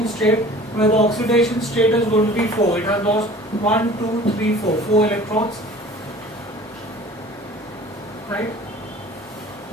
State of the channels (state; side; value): normal; both; correlation 0.46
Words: state, where the oxidation state is going to be 4. It has lost 1 2 3 4 electrons. Right?